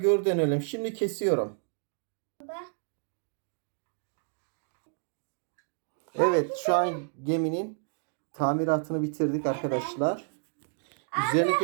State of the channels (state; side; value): silent; left; digital silence